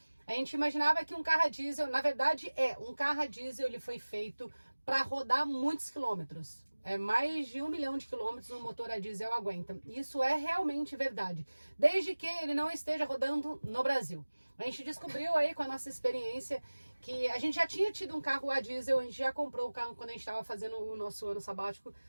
A gente imaginava que um carro a diesel, na verdade um carro a diesel, ele foi feito para rodar muitos quilômetros. Mais de 1 milhão de quilômetros um motor a diesel aguenta. Isso é realmente verdade, desde que ele não esteja rodando no Brasil. A gente descobriu aí com a nossa experiência que a gente já tinha tido um carro a diesel, a gente já comprou o carro quando a gente estava fazendo o nosso ano sabático.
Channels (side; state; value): both; inverted; correlation -1.00